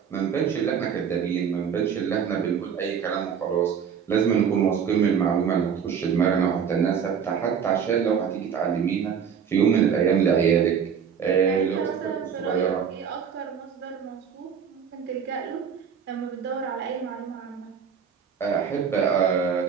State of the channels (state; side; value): quieter; left; 7.3 dB